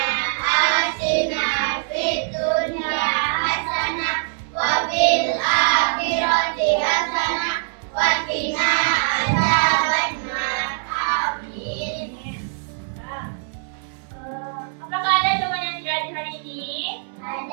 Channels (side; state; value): left; silent; 64 dB below the other